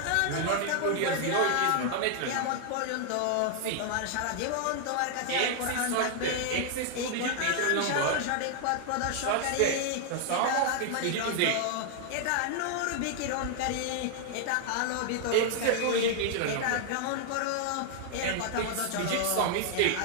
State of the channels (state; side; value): different; both; correlation 0.00